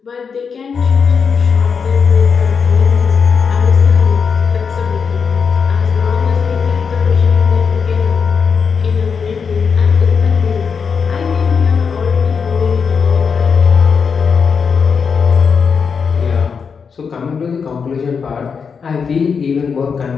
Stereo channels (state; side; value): quieter; right; 6.0 dB